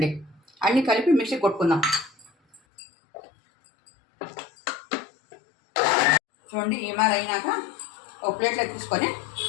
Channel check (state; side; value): drops out; right; at 2.6 s